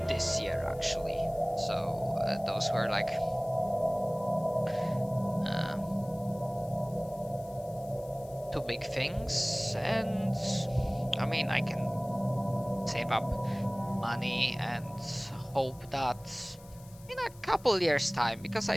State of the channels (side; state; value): left; noise; hiss, 23 dB below the sound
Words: this year actually. So those were like two big things, and I mean, I can save up money and hope that in a couple years time, because